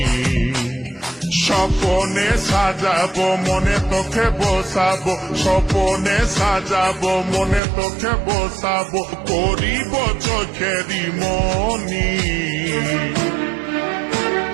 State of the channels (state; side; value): drops out; left; at 7.6 s